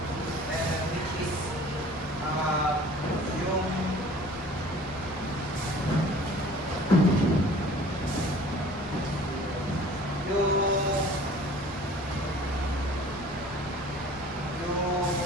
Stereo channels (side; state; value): both; normal; correlation 0.48